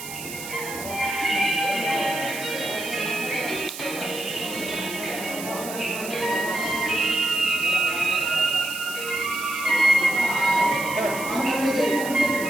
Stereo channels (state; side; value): noise; right; hiss, 10 dB below the sound